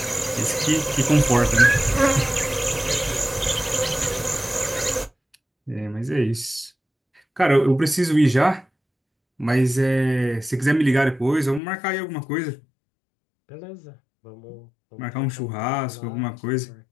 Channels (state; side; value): drops out; right; at 11.6 s